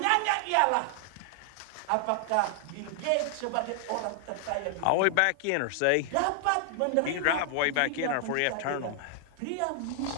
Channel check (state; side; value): different; both; correlation 0.00